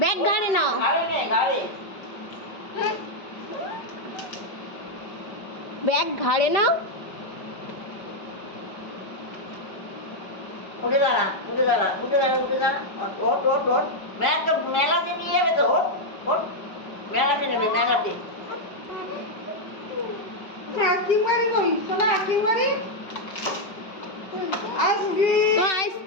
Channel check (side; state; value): right; late; 5.3 ms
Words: ব্যাগ ঘাড়ে নাও, ব্যাগ ঘাড়ে নাও। উঠে দাঁড়া, উঠে দাঁড়া, উঠে দাঁড়া, উঠে দাঁড়া। ওঠ, ওঠ, ওঠ। ব্যাগ তো মেলাতে নিয়ে যাবে তো, ওঠ, ওঠ। মেলাতে নেবে, মেলাতে। তো